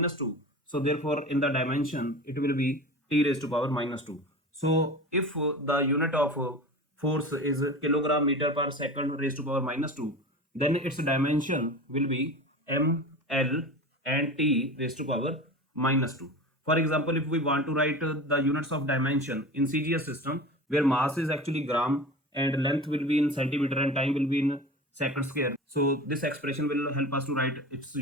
2, so therefore in the dimension it will be t raised to power minus 2. So if the unit of force is kilogram meter per second raised to power minus 2, then its dimension will be m, l and t raised to power minus 2. For example, if we want to write the units of dimension in CGS system, where mass is actually gram and length will be in centimeter and time will be in second square. So this expression will help us to write its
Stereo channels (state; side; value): normal; both; correlation 0.33